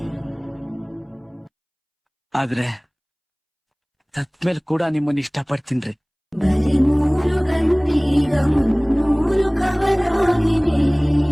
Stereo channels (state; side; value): identical; both; correlation 1.00